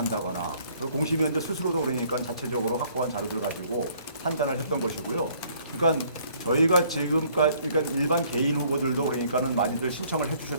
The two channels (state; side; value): inverted; both; correlation -0.61